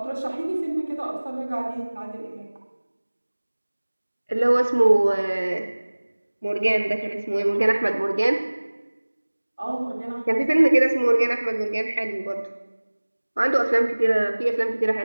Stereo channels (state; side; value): inverted; both; correlation -1.00